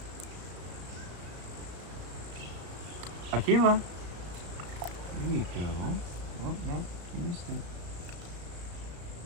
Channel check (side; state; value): left; late; 34 ms